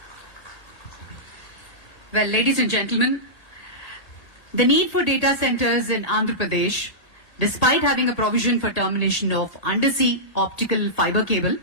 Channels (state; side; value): late; right; 1.7 ms